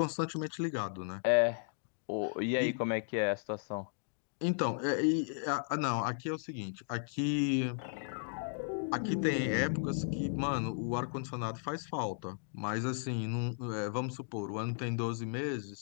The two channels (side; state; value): right; silent; digital silence